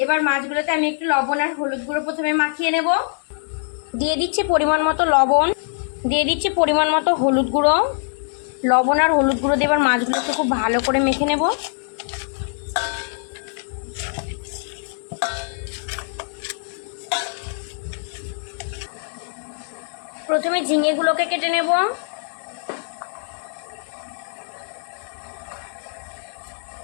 এবার মাছগুলোতে আমি একটু লবণ আর হলুদ গুঁড়ো প্রথমে মাখিয়ে নেব। দিয়ে দিচ্ছি পরিমাণ মতো লবণ, দিয়ে দিচ্ছি পরিমাণ মতো হলুদ গুঁড়ো। লবণ আর হলুদ গুঁড়ো দিয়ে এবার মাছগুলোকে খুব ভালো করে মেখে নেব। প্রথমে ঝিঙেগুলোকে কেটে নেব।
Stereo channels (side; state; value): right; silent; digital silence